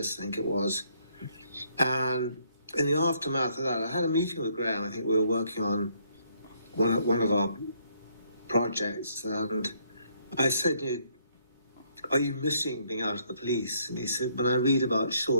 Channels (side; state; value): both; inverted; correlation -0.69